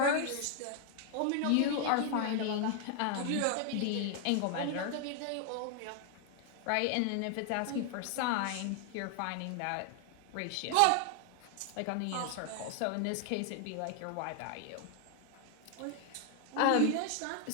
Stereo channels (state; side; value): different; both; correlation 0.00